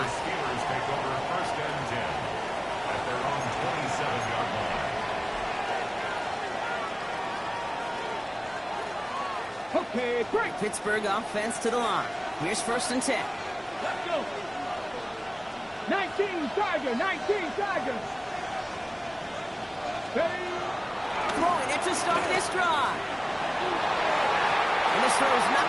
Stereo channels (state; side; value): identical; both; correlation 1.00